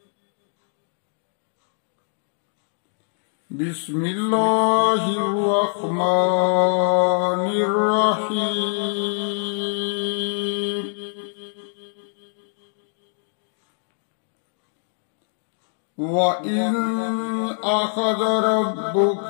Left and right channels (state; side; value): silent; right; digital silence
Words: بسم الله الرحمن الرحيم. وإذ أخذ